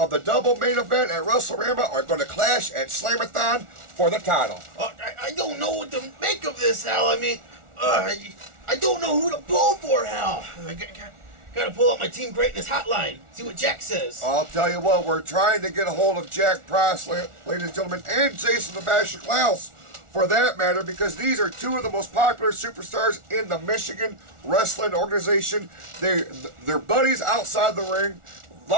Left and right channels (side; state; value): left; late; 1.4 ms